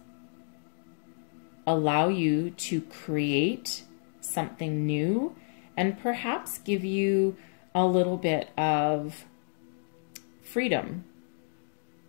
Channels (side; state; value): right; silent; digital silence